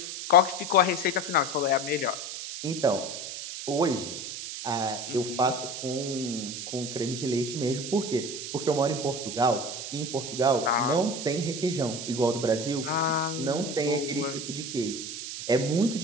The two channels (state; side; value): noise; right; hiss, 7 dB below the sound